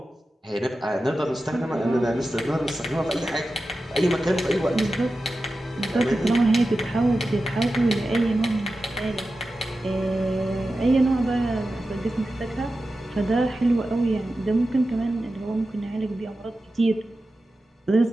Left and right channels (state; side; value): normal; both; correlation 0.93